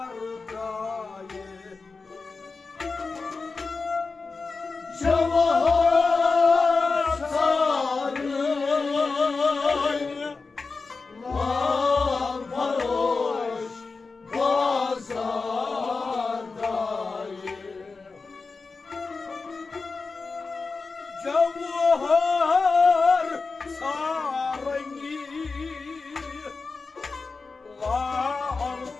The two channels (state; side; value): quieter; right; 4.2 dB